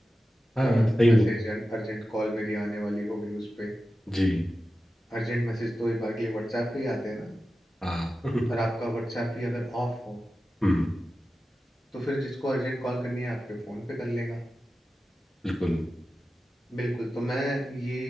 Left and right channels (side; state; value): both; normal; correlation 0.93